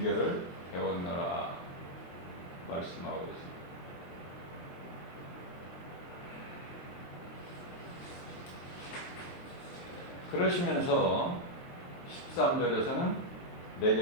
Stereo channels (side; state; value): right; late; 22 ms